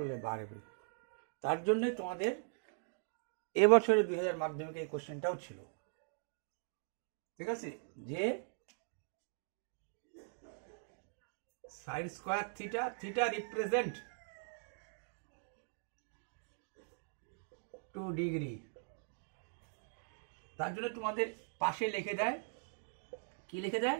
বাড়বে। তার জন্যে তোমাদের এবছরে 2000 মাধ্যমিকে এই কোশ্চেনটাও ছিল। ঠিক আছে, যে sine square theta, theta represent 2 degree. তার জন্য তোমাদের পাশে লিখে দেয়, কি লিখে দেয়,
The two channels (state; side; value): silent; left; digital silence